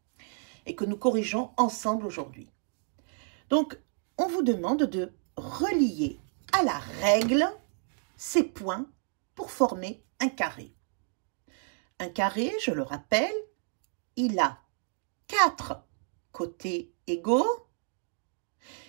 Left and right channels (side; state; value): left; silent; 57 dB below the other